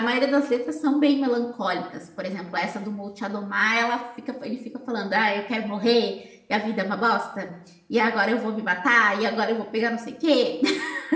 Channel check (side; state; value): both; identical; correlation 1.00